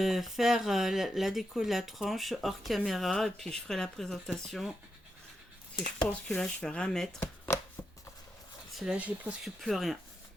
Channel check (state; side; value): normal; both; correlation 0.86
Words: faire la déco de la tranche hors caméra et puis je ferai la présentation. Parce que je pense que là je vais rien mettre. Parce que là j'ai presque plus rien.